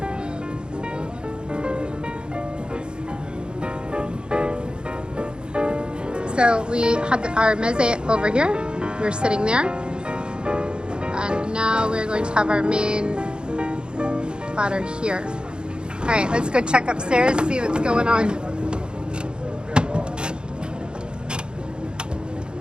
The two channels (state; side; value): late; left; 0.050 ms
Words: So we had our meze over here. We're sitting there. And now we're going to have our main platter here. All right, let's go check upstairs, see what's going on.